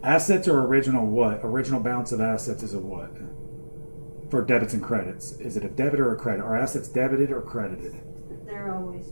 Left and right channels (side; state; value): both; inverted; correlation -1.00